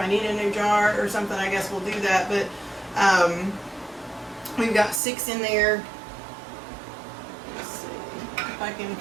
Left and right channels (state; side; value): drops out; left; at 5.0 s